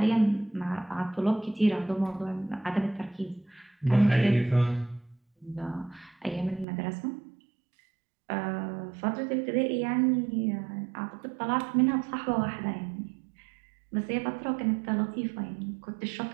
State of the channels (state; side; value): drops out; left; at 6.7 s